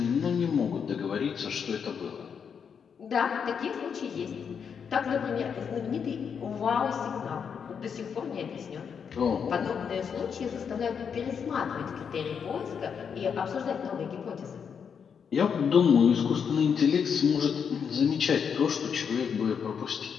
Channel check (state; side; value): quieter; right; 6.9 dB